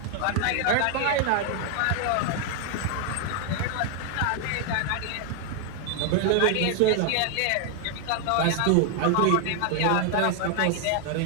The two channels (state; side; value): different; both; correlation 0.00